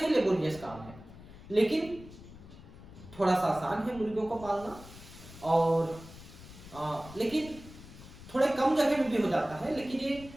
लेबोरियस काम है। लेकिन थोड़ा सा आसान है मुर्गियों को पालना, और लेकिन थोड़े कम जगह में भी हो जाता है। लेकिन ये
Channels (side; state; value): left; noise; rumble, 17 dB below the sound